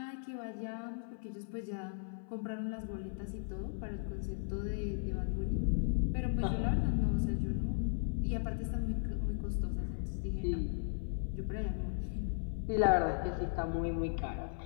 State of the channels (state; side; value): silent; right; 53 dB below the other